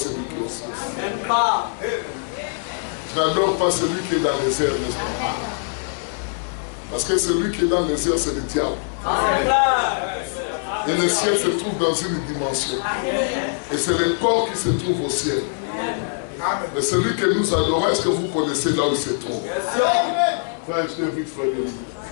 qui est au ciel. Je n'adore pas celui qui est dans les airs, n'est-ce pas? Parce que celui qui est dans les airs, c'est le diable. Et le ciel se trouve dans une dimension. Et c'est le corps qui se trouve au ciel. Mais celui que nous adorons, est-ce que vous connaissez là où il se trouve? Frère, je t'invite, frère.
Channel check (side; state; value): right; silent; 64 dB below the other